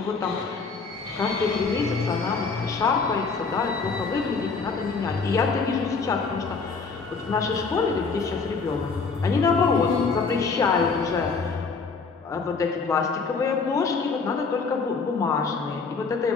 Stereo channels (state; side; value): quieter; right; 4.7 dB